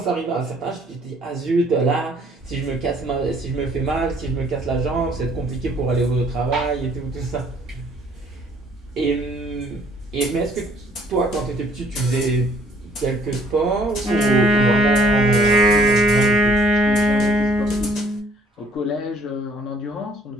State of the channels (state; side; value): normal; both; correlation 0.61